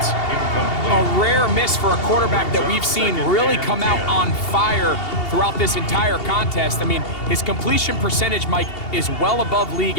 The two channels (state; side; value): late; right; 2.7 ms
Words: A rare miss for a quarterback that we've seen really come out on fire throughout this entire contest. I mean, his completion percentage, Mike, is well above league